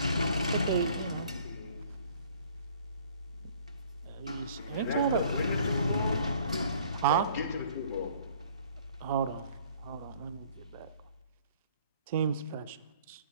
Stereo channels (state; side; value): inverted; both; correlation -0.56